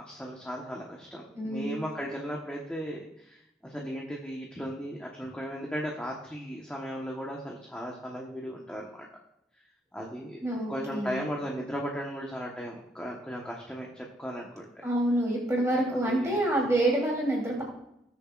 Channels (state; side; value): normal; both; correlation 0.71